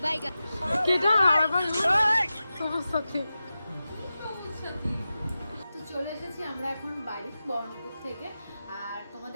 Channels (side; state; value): both; inverted; correlation -0.93